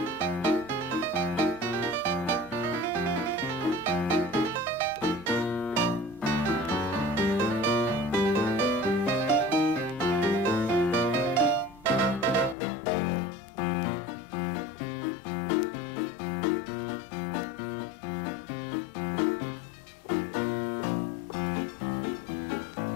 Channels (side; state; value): right; drops out; at 12.6 s